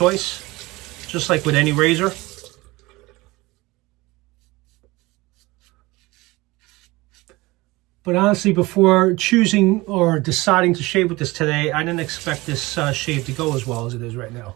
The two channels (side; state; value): left; quieter; 21.4 dB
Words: just like with any razor. But honestly, before choosing or deciding to shave with this today, I didn't expect this shave to go as well as it is right